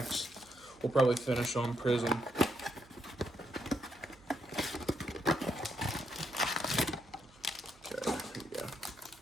We'll probably finish on prism. Okay, here we go.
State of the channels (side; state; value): right; noise; hum, 27 dB below the sound